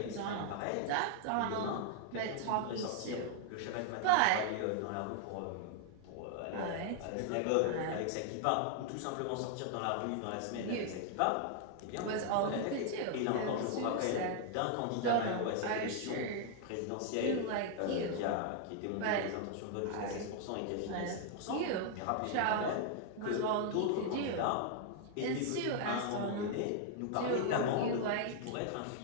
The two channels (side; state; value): both; different; correlation 0.00